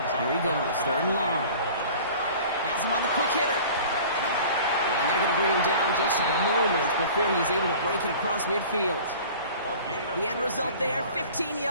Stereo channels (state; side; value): inverted; both; correlation -0.44